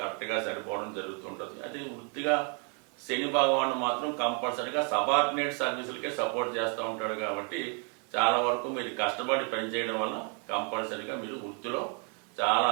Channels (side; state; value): left; quieter; 38.5 dB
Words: సరిపోవడం జరుగుతుంటుంది. అది వృత్తిగా శని భగవాను మాత్రం కంపల్సరీగా సబార్డినేట్ సర్వీసులకే సపోర్ట్ చేస్తూ ఉంటాడు కాబట్టి చాలా వరకు మీరు కష్టపడి పనిచేయడం వల్ల కంపల్సరీగా మీరు వృత్తిలో చాలా